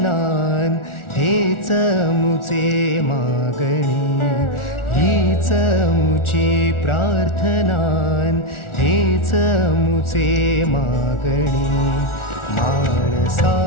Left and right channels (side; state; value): right; late; 1.4 ms